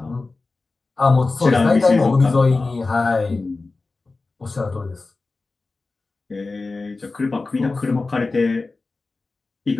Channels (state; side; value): quieter; right; 3.6 dB